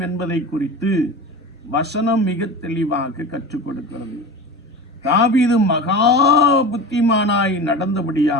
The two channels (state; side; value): normal; both; correlation 0.31